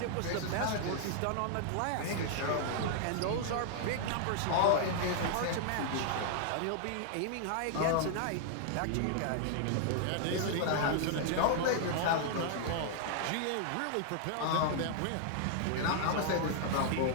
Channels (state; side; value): different; both; correlation -0.01